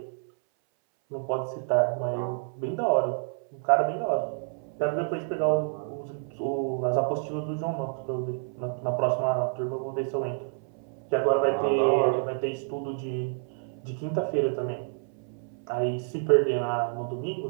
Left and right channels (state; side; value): silent; left; 59 dB below the other